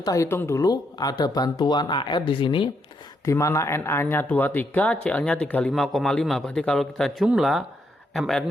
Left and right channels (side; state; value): both; normal; correlation 0.77